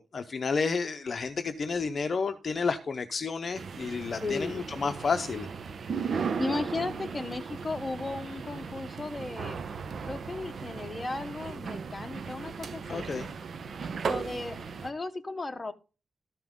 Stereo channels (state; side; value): normal; both; correlation 0.85